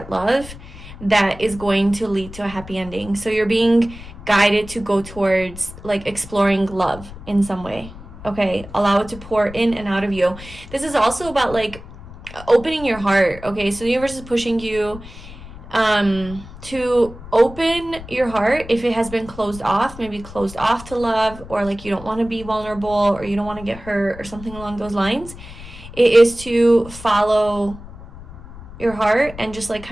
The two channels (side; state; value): left; noise; rumble, 15 dB below the sound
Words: love that is going to lead to a happy ending. So you're being guided to go towards like exploring love in some way. Okay, allow it to pour in and out of you. This is also about like opening your heart. Okay, so the universe is pushing you to open your heart if it has been closed off, maybe closed off to love, or like you don't want to be vulnerable or you don't want to get hurt or something along those lines. It is to follow your heart and just like